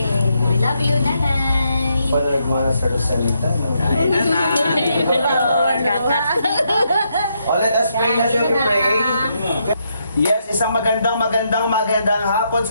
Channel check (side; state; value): both; inverted; correlation -0.78